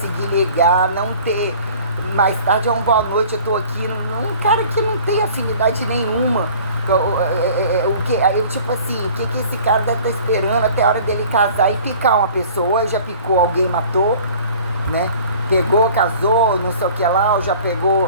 ligar, não ter, mais tarde é uma boa noite, eu tô aqui, um cara que não tem afinidade nenhuma. Tipo assim, o que esse cara deve estar esperando até a hora dele casar e picar uma pessoa? Ou já picou alguém, matou, né? Pegou, casou, não sei o que lá, ou já pegou,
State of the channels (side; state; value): both; inverted; correlation -0.48